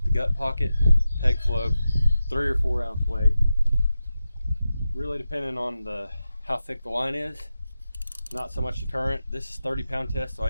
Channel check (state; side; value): inverted; both; correlation -0.92